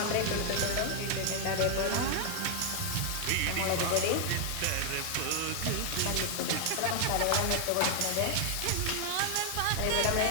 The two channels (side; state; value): both; different; correlation 0.00